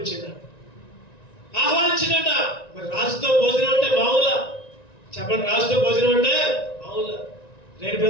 ఆహ్వానించిందంట. మరి రాజుతో భోజనం అంటే మామూలా? చెప్పండి, రాజుతో భోజనం అంటే మామూలా? రైట్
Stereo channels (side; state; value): right; late; 1.9 ms